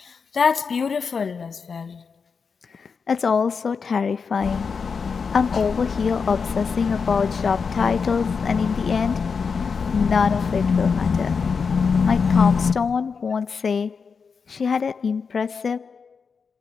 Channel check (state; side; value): quieter; right; 5.5 dB